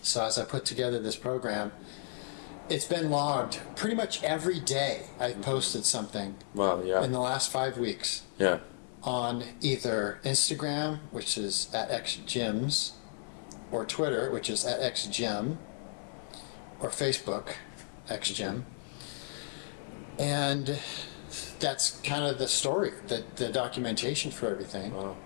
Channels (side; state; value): right; silent; digital silence